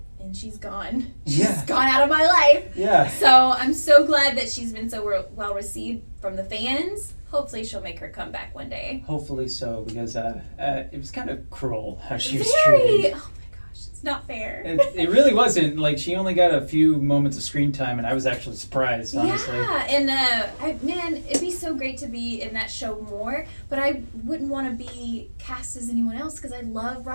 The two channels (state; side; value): inverted; both; correlation -1.00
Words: and she's gone. She's gone out of my life. Yeah. So I'm so glad that she's been so well received from the fans. Hopefully she'll make her comeback one day. Hopefully so, because it was kind of cruel how she was Very. treated. Oh my gosh, it's not fair. It really wasn't. Like, she only got a few moments of screen time, and I was actually surprised, honestly. Yeah, and man, it'd be so great to be in that show more, but I wouldn't want to be cast as anyone else because I love